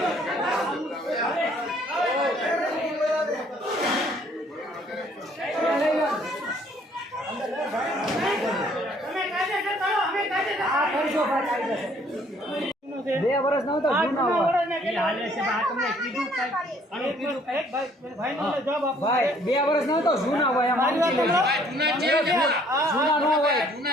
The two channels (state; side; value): normal; both; correlation 0.61